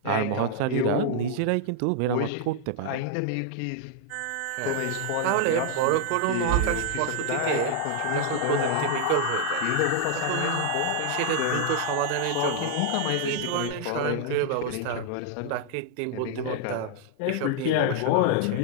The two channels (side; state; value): both; different; correlation -0.01